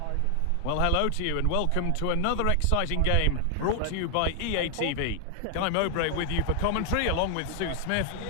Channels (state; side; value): different; both; correlation 0.00